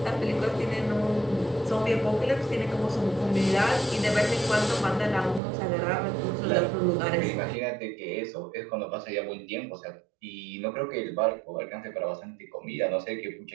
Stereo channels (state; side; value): drops out; left; at 5.4 s